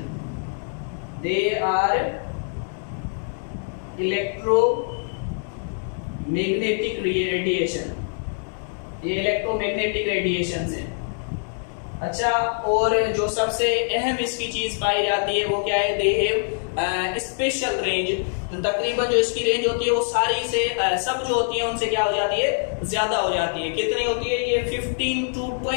They are electromagnetic radiation, ये इलेक्ट्रोमैग्नेटिक रेडिएशन है। अच्छा, और जो सबसे अहम इसकी चीज पाई जाती है वो क्या है, दे हैव स्पेशल रेंज। तो तकरीबन जो इसकी रेंज होती है वो सारी से सब जो होती है उनसे क्या हो जाती है, ज्यादा हो जाती है। कितनी होती है, ये 15 to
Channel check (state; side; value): silent; right; digital silence